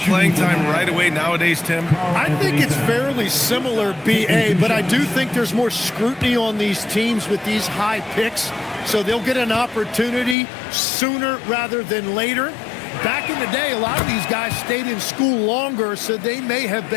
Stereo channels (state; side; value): drops out; right; at 10.4 s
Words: time right away nowadays, Tim? I think it's fairly similar, B.A., but I do think there's more scrutiny on these teams with these high picks, so they'll get an opportunity sooner rather than later. Back in the day, a lot of these guys stayed in school longer, so they may have